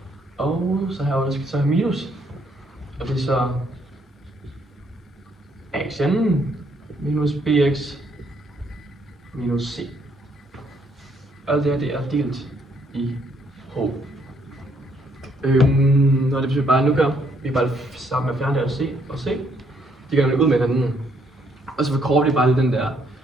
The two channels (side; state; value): both; normal; correlation 0.70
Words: Og så her skal vi så have minus. Og det er så axn minus bx minus c. Alt det her det er delt i h. Og det betyder bare, at nu gør vi bare sammen med at fjerne det c og c. De gør det ud med hinanden. Og så forkorter vi bare den der